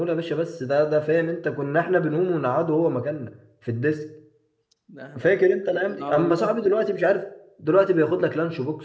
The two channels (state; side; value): identical; both; correlation 1.00